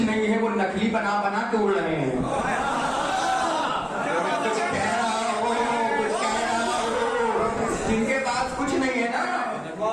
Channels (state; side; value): identical; both; correlation 1.00